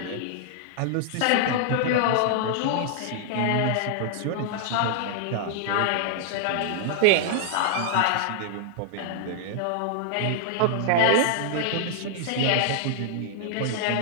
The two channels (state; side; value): different; both; correlation -0.01